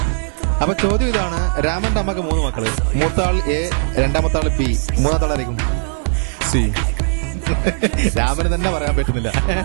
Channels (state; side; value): silent; left; 58 dB below the other